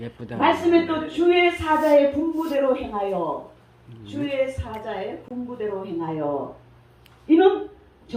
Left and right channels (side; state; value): both; identical; correlation 1.00